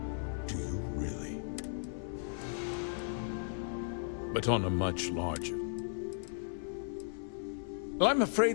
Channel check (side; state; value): right; silent; 54 dB below the other